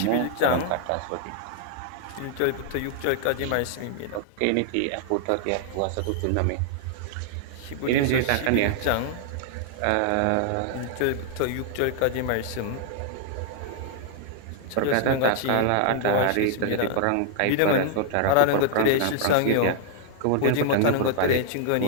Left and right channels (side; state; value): both; different; correlation 0.00